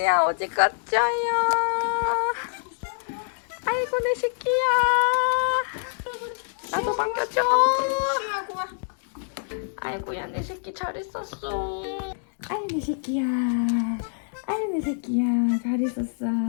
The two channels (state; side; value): silent; right; 61 dB below the other